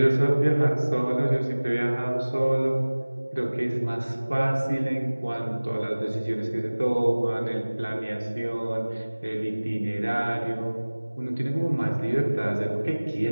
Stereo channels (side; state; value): both; inverted; correlation -1.00